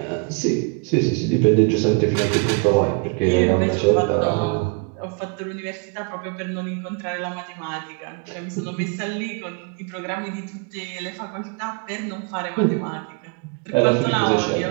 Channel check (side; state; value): left; quieter; 33.1 dB